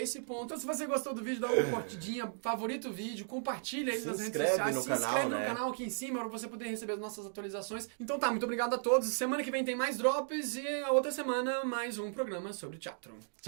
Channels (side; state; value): left; silent; digital silence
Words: esse ponto. Então, se você gostou do vídeo, dá uma curtidinha, favorita o vídeo, compartilha aí nas redes sociais. Se inscreve no canal aqui em cima para você poder receber as nossas atualizações. Então tá, muito obrigado a todos. Semana que vem tem mais drops e a outra semana mais um programa sobre teatro.